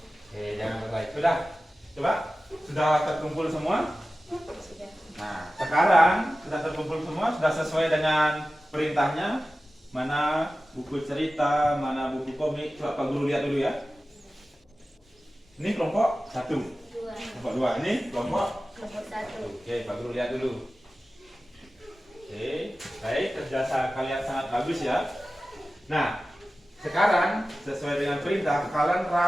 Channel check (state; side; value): normal; both; correlation 0.95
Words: Jangan berlari. Sudah? Coba. Sudah terkumpul semua? Nah, sekarang sudah terkumpul semua, sudah sesuai dengan perintahnya. Mana buku cerita, mana buku komik. Coba Pak Guru lihat dulu ya. Ini kelompok 1. Kelompok 2. Ini kelompok 1. Oke, Pak Guru lihat dulu. Oke, baik, kerja kalian sangat bagus ya. Nah, sekarang sesuai dengan perintah, kalian